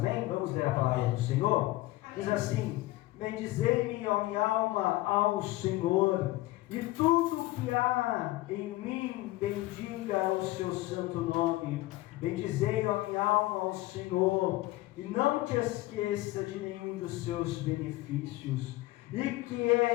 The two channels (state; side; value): quieter; right; 18.2 dB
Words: Vamos ler a palavra do Senhor. Diz assim: bendizei-me, ó minha alma, ao Senhor, e tudo que há em mim bendiga o seu santo nome. Bendizei, ó minha alma, ao Senhor, e não te esqueça de nenhum dos seus benefícios. E que